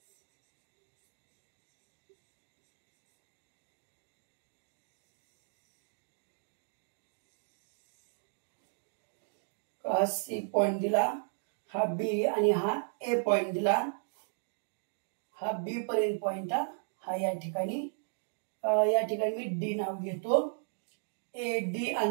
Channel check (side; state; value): left; silent; digital silence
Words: हा सी पॉइंट दिला, हा बी आणि हा ए पॉइंट दिला, हा बी पर्यंत पॉइंट हा या ठिकाणी मी डी नाव घेतो. ए डी